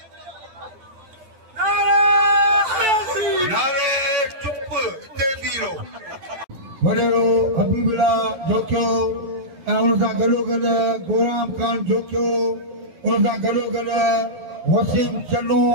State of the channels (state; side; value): late; left; 11 ms